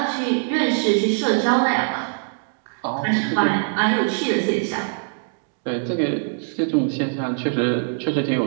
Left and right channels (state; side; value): silent; left; digital silence